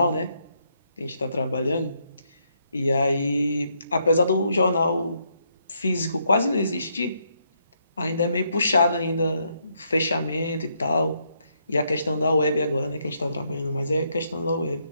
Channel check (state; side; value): inverted; both; correlation -0.75